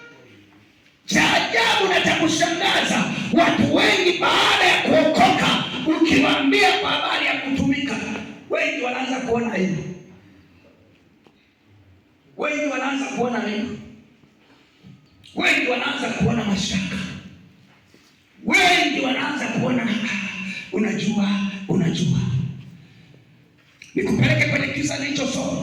Cha ajabu na cha kushangaza, watu wengi baada ya kuokoka, ukiwaambia kwa habari ya kutumika, wengi wanaanza kuona hivyo. Wengi wanaanza kuona hivyo. Wengi wanaanza kuona mashaka. Wengi wanaanza kuona unajua. Nikupeleke kwenye kisa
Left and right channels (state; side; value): identical; both; correlation 1.00